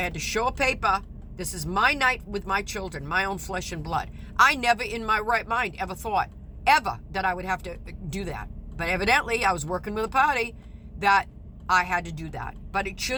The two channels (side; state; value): both; identical; correlation 1.00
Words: had to show a paper. This is my night with my children, my own flesh and blood. I never in my right mind ever thought, ever, that I would have to do that. But evidently, I was working with a party that I had to do that. But it